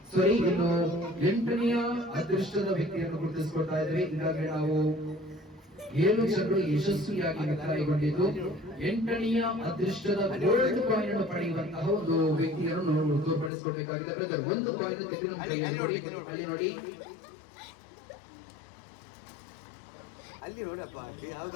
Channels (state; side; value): drops out; right; at 13.5 s